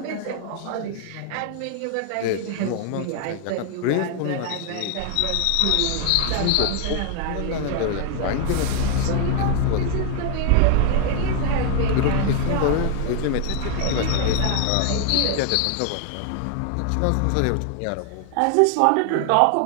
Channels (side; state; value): both; different; correlation 0.00